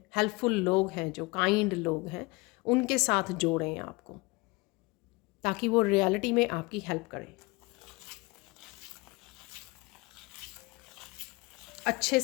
हेल्पफुल लोग हैं, जो काइंड लोग हैं, उनके साथ जोड़ें आपको, ताकि वो रियलिटी में आपकी हेल्प करें, अच्छे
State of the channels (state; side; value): quieter; right; 24.9 dB